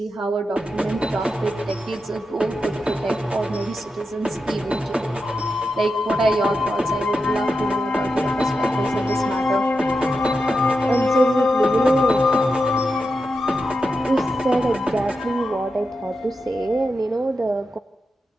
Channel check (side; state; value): both; normal; correlation 0.88